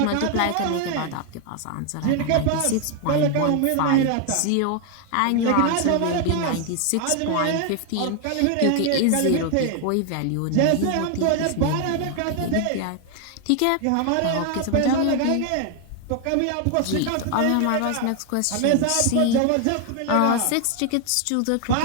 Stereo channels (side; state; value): both; different; correlation 0.00